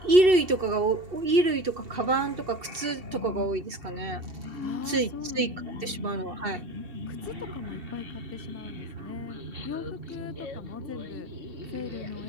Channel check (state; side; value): late; left; 2.7 ms